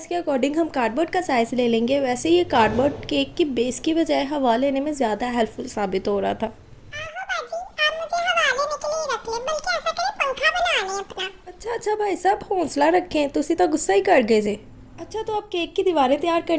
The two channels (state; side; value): identical; both; correlation 1.00